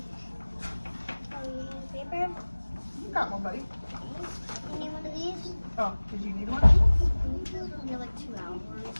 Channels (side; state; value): both; inverted; correlation -1.00